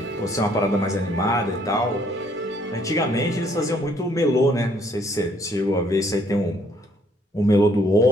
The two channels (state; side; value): normal; both; correlation 0.65